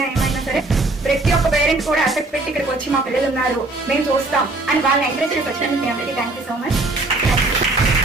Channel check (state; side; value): quieter; left; 3.0 dB